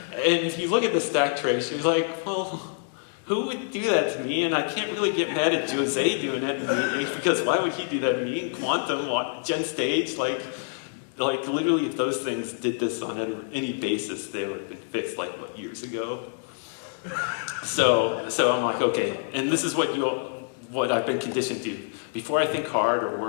look at the stack trace, you're like, well, who would do that to me? And I can't really get mad at Jose doing that to me, because why would he do that to me? Quantum, Gen Stage, like literally, if those things did this on any basis, they would have been fixed years ago. So I'm like, okay, and this is what I've been conditioned to. Before I think hard or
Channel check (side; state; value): right; silent; digital silence